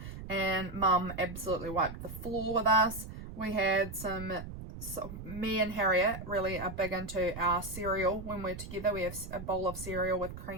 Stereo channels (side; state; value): right; noise; rumble, 10 dB below the sound